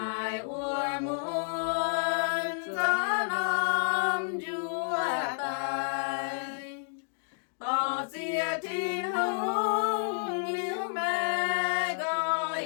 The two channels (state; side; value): silent; right; digital silence